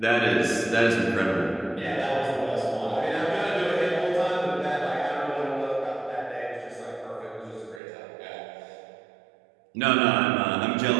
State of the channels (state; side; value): drops out; left; at 7.8 s